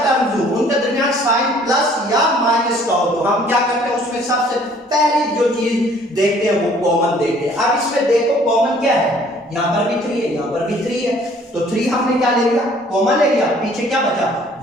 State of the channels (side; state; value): both; normal; correlation 0.57